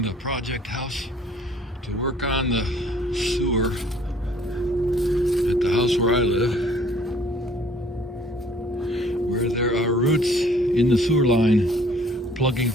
the project house to work on the sewer at the house where I live, where there are roots in the sewer line plugging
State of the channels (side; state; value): both; normal; correlation 0.57